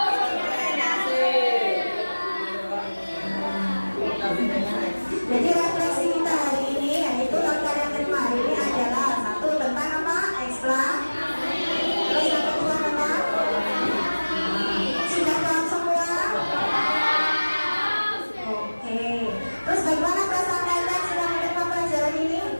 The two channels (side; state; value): both; inverted; correlation -1.00